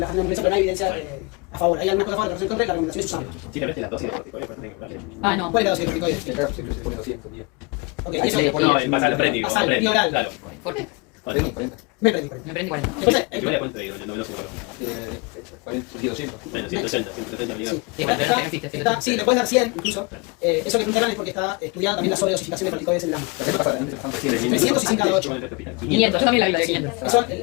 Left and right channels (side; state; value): right; quieter; 28.4 dB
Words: nebulización, pero no hay evidencia a favor. Hay algunas cosas a favor, pero en contra y la recomendación es usarlo. Sí, realmente la dosis de corticoides tiene que darle. No. ¿Cuál es la dosis de corticoides? Se pone 200, bien. Ok, Ahí eso se le pone basal prendí. basal, y oral. Claro. Fuerte. 40. Me prendí. Me prendí 40. Entonces, Yo le cuento de no me lo sé. 200. Bueno, 180, 170 millones. Sí, bueno, pero no existe. sí, le puedes dar 100 incluso. Eso que preguntaron es porque está estudiada también la sobredosificación de corticoides en el AMA. 300 y 100 cada 8. 500, yo también la vi de 500. Eso,